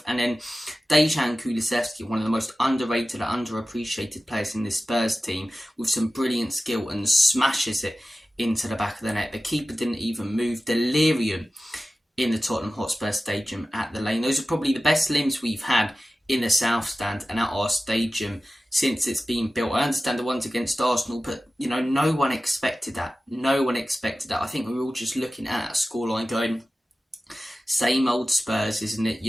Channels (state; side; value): normal; both; correlation 0.95